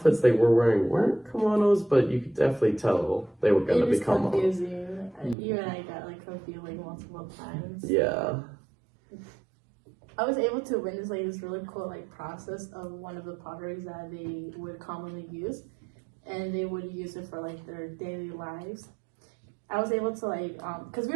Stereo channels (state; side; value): drops out; left; at 5.4 s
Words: they were wearing weren't kimonos, but you could definitely tell they were going to become confusing. You and I got like confused like multiple times. Yeah. I was able to witness like this really cool like process of one of the potteries that they would commonly use, and they would use it for like their daily lives. I was able to like because we